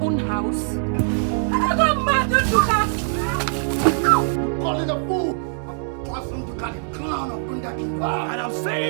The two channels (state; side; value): silent; left; digital silence